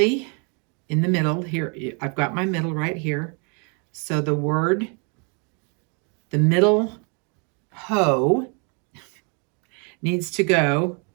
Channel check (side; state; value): left; quieter; 36.7 dB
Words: in the middle here, I've got my middle right here. So the word, the middle ho needs to go